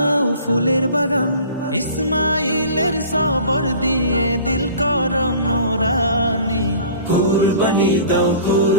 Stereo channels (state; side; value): inverted; both; correlation -0.45